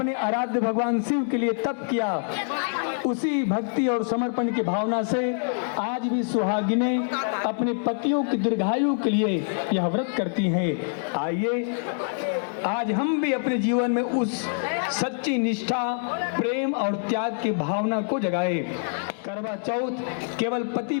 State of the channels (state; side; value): silent; right; digital silence